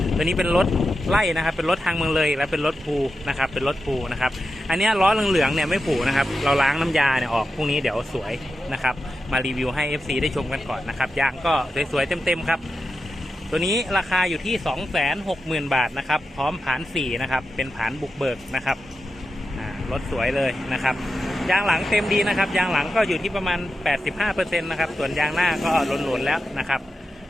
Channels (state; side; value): normal; both; correlation 0.90